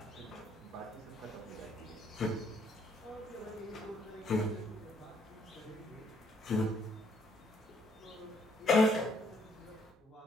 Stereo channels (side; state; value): both; normal; correlation 0.69